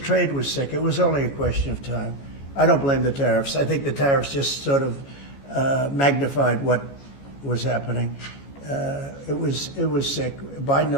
was sick. It was only a question of time. I don't blame the tariffs. I think the tariffs just sort of magnified what was happening. It was sick. Biden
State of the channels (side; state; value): right; late; 14 ms